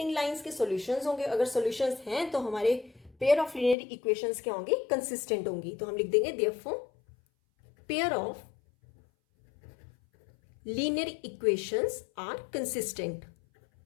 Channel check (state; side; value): drops out; right; at 3.8 s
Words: लाइंस के सॉल्यूशंस होंगे। अगर सॉल्यूशंस हैं तो हमारे पेयर ऑफ लीनियर इक्वेशंस क्या होंगी, कंसिस्टेंट होंगी। तो हम लिख देंगे therefore pair of linear equations are consistent.